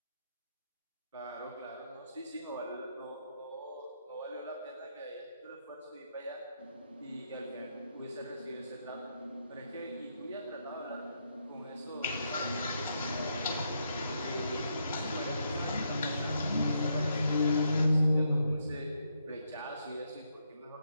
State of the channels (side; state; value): both; inverted; correlation -0.78